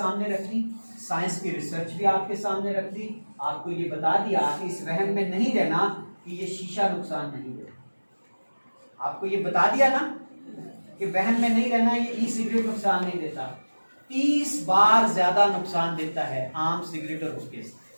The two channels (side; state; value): both; inverted; correlation -1.00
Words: रखी, साइंस की रिसर्च भी आपके सामने रख दी, आपको ये बता दिया कि इस वहम में नहीं रहना कि ये शीशा नुकसान नहीं देता। आपको ये बता दिया ना कि वहम में नहीं रहना, ये ई सिगरेट नुकसान नहीं देता, 30 बार ज्यादा नुकसान देता है आम सिगरेट और हुक्के से।